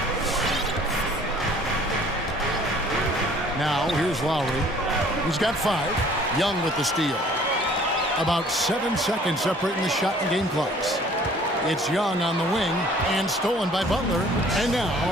Now here's Lowry. He's got 5. Young with the steal. About 7 seconds separating the shot and game clocks. It's Young on the wing and stolen by Butler. And now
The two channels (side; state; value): both; normal; correlation 0.54